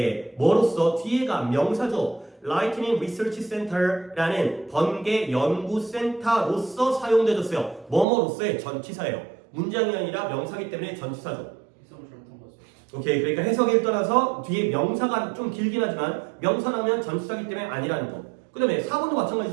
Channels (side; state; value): left; drops out; at 8.1 s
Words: 뭐로써? 뒤에가 명사죠. Lightning Research Center라는 번개 연구센터로서 사용되어졌어요. 뭐뭐로서의 전치사예요. 문장이 아니라 명사기 때문에 전치사죠. 해석을 잘못한 거죠. 오케이, 그러니까 해석에 따라서 뒤에 명사가 좀 길긴 하지만 명사라면 전치사기 때문에 아니라는 거. 그 다음에 4번도